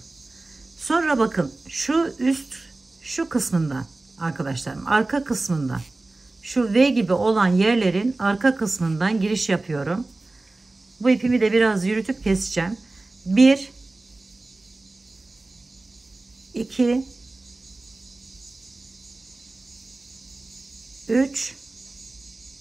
Sonra bakın şu kısmından arkadaşlarım, arka kısmından, şu V gibi olan yerlerin arka kısmından giriş yapıyorum. Bu ipimi de biraz yürütüp keseceğim. 1 2 3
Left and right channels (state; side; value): quieter; left; 3.1 dB